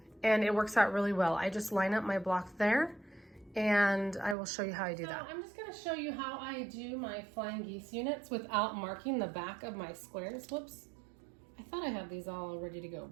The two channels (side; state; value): left; drops out; at 4.4 s